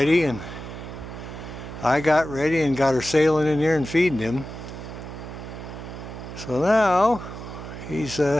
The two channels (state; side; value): noise; right; hum, 10 dB below the sound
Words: and I got ready and got her sailing in here and feeding him. So now he's